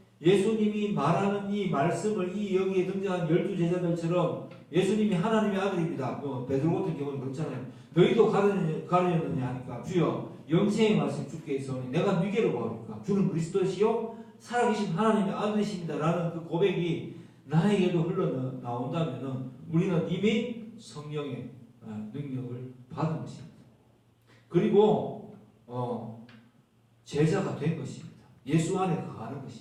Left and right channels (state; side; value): identical; both; correlation 1.00